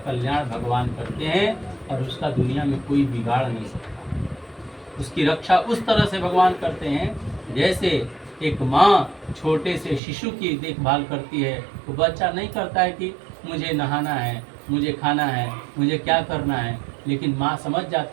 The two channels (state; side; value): drops out; left; at 10.0 s